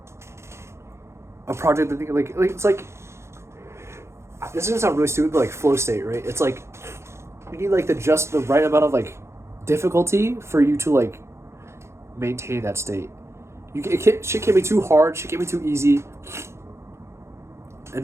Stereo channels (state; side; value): late; left; 0.13 ms